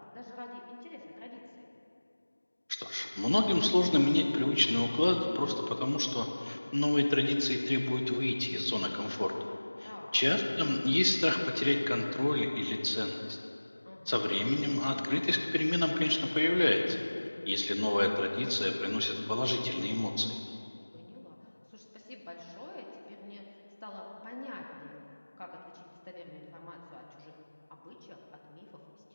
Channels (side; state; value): both; inverted; correlation -1.00